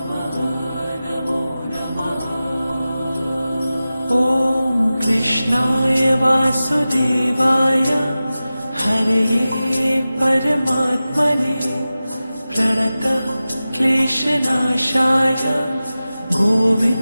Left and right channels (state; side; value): inverted; both; correlation -0.95